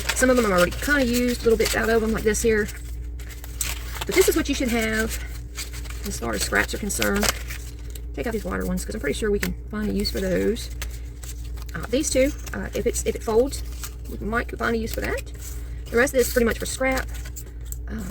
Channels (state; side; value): identical; both; correlation 1.00